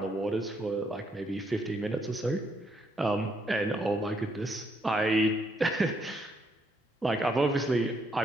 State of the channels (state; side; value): normal; both; correlation 0.74